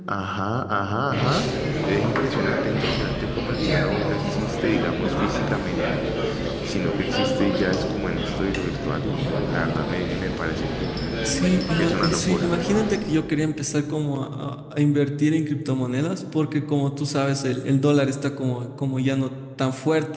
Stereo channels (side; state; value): both; identical; correlation 1.00